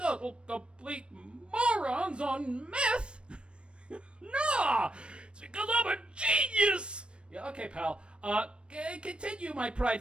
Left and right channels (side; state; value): left; late; 0.057 ms